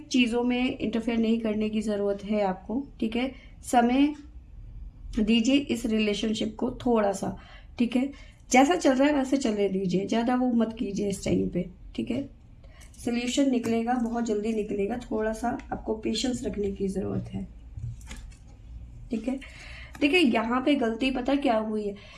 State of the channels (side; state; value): both; identical; correlation 1.00